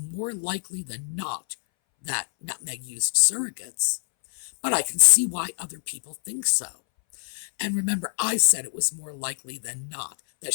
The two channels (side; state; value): right; silent; 61 dB below the other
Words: likely than not that Nutmeg used surrogates, but I can see why other people think so. And remember, I said it was more likely than not that